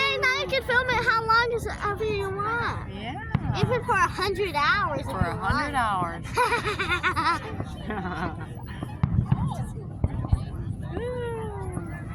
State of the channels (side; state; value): both; identical; correlation 1.00